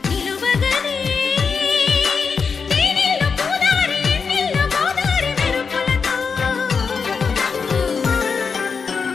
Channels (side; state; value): right; quieter; 5.5 dB